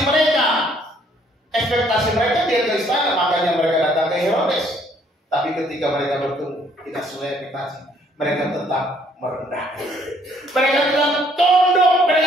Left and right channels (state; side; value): normal; both; correlation 0.64